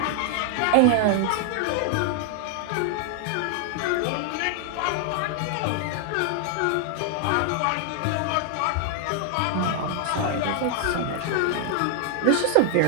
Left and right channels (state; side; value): different; both; correlation 0.00